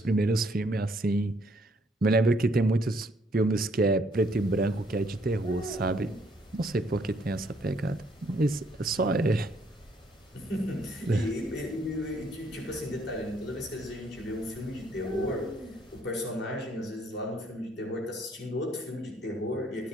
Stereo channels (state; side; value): normal; both; correlation 0.67